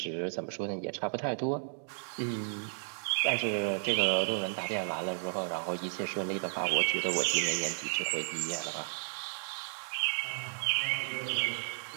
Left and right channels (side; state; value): left; silent; digital silence